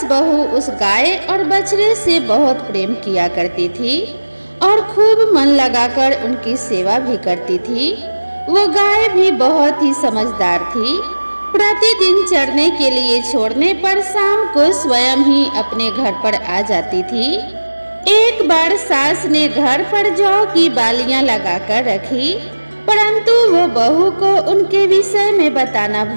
बहू उस गाय और बछड़े से बहुत प्रेम किया करती थी और खूब मन लगाकर उनकी सेवा भी करती थी। वो गाय भी बहुत ही समझदार थी। प्रतिदिन चरने के लिए छोड़ने पर शाम को स्वयं ही अपने घर पर आ जाती थी। एक बार सास ने घर पर जौ की बालियां लगाकर रखी, परंतु वो बहू को उनके विषय में बताना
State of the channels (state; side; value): inverted; both; correlation -1.00